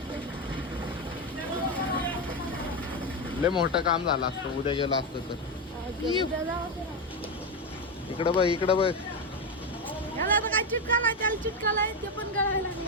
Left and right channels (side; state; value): both; normal; correlation 0.11